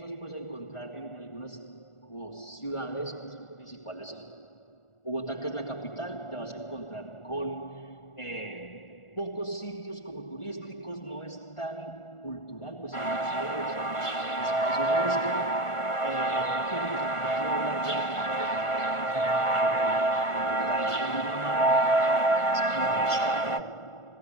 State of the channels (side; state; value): right; late; 1.4 ms